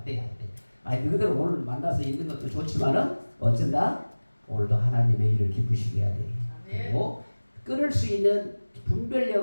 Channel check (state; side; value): inverted; both; correlation -1.00